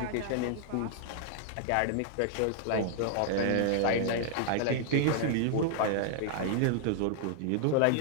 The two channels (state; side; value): different; both; correlation 0.00